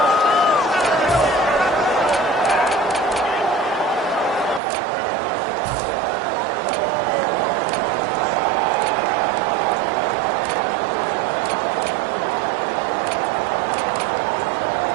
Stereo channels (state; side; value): drops out; left; at 4.6 s